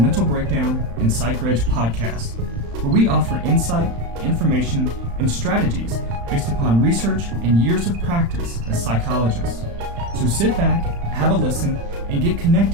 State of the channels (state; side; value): late; left; 35 ms